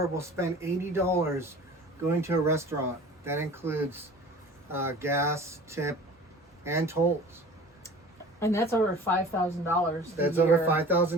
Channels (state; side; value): normal; both; correlation 0.43